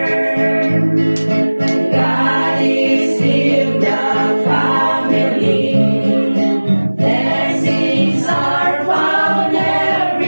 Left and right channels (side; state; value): both; inverted; correlation -1.00